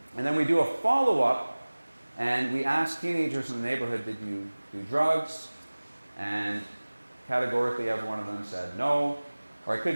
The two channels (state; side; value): inverted; both; correlation -1.00